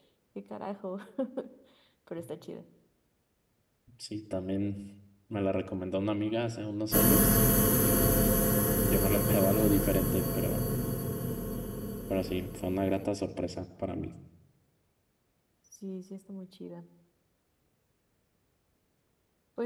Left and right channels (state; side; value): identical; both; correlation 1.00